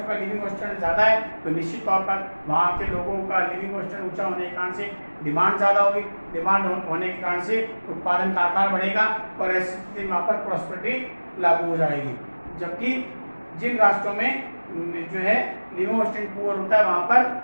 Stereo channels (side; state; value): both; inverted; correlation -1.00